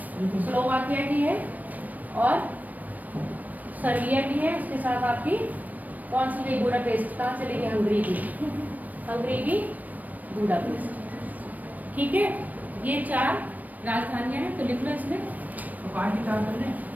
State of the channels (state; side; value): late; left; 0.079 ms